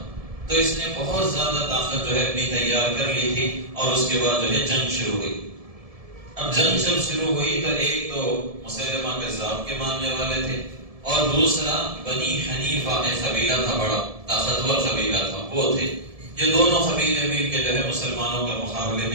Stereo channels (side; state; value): left; late; 1.7 ms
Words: تو اس نے بہت زیادہ طاقت جو ہے اپنی تیار کر لی تھی، اور اس کے بعد جو ہے جنگ شروع ہوئی۔ اب جنگ جب شروع ہوئی تو ایک تو مسیلمہ کذاب کے ماننے والے تھے، اور دوسرا بنی حنیفہ ایک قبیلہ تھا، بڑا طاقتور قبیلہ تھا، وہ تھے۔ یہ دونوں قبیلے مل کے جو ہے مسلمانوں کا مقابلے